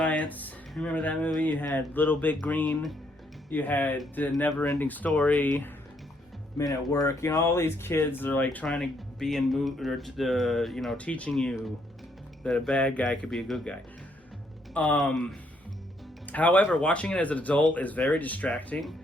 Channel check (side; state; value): both; normal; correlation 0.72